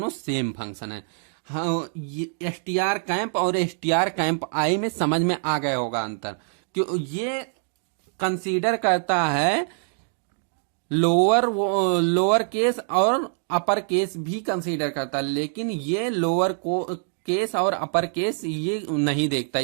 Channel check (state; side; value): silent; left; 62 dB below the other